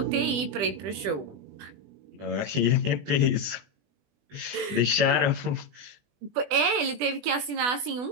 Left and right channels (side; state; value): left; late; 20 ms